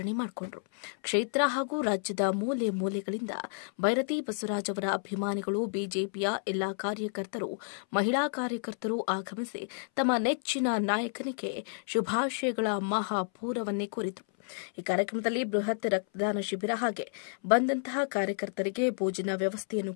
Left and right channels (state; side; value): silent; right; 57 dB below the other